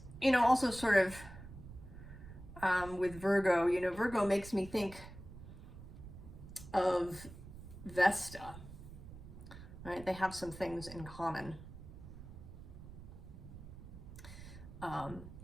you know, also sort of with Virgo, you know, Virgo makes me think of Vesta. Right? They have some things in common.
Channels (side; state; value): right; noise; rumble, 14 dB below the sound